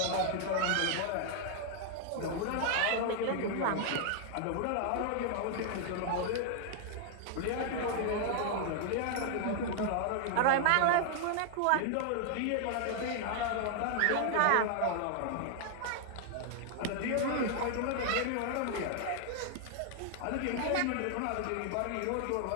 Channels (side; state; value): both; different; correlation 0.00